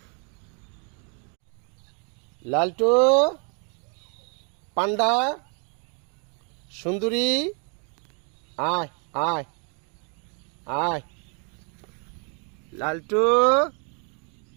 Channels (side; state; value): left; quieter; 39.1 dB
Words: লালটু, পান্ডা, সুন্দরী, আয় আয় আয়। লালটু,